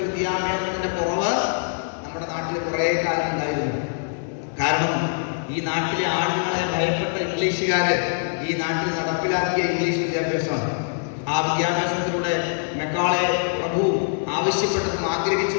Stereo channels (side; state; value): right; silent; digital silence